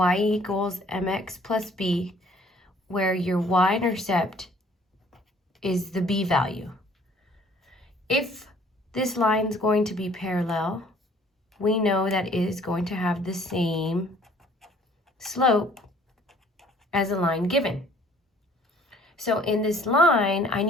equals mx plus b, where your y-intercept is the b value. If this line is going to be parallel, we know that it is going to have the same slope as a line given. So in this line, I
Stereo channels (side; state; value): both; normal; correlation 0.57